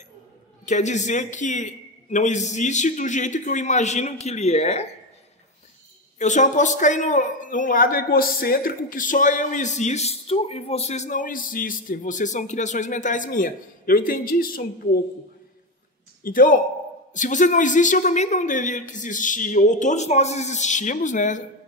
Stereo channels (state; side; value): normal; both; correlation 0.15